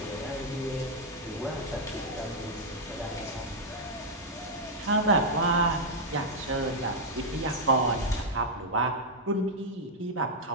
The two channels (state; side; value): normal; both; correlation -0.03